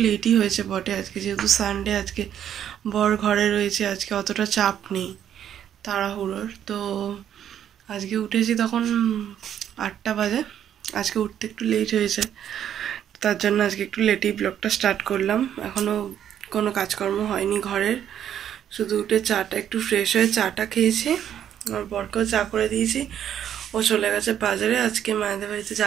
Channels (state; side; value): quieter; left; 9.9 dB